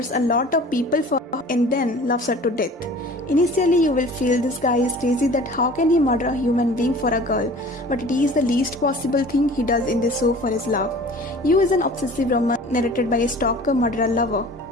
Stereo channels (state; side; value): normal; both; correlation 0.44